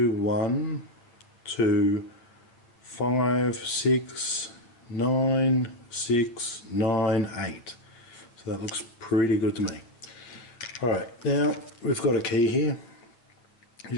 1, 2, 5, 6, 9, 6, 9, 8. So that looks pretty good to me. Alright, now we've got a key here. You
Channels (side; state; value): right; late; 8.7 ms